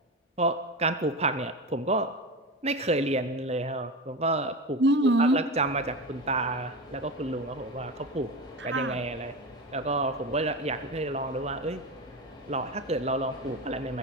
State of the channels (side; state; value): both; normal; correlation 0.23